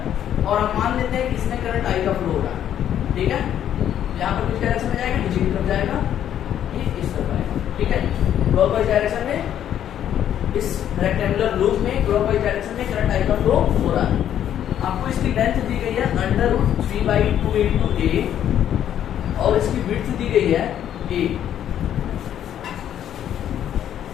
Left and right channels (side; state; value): right; quieter; 10.4 dB